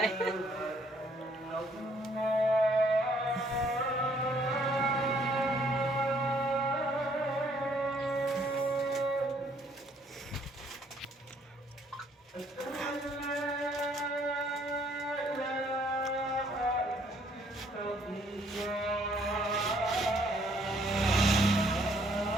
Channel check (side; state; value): both; normal; correlation 0.65